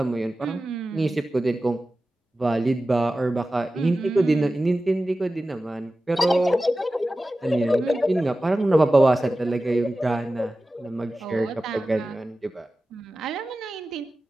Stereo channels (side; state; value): both; normal; correlation 0.95